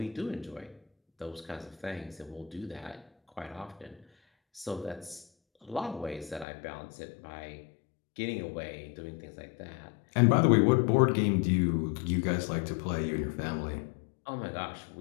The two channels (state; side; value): drops out; right; at 6.5 s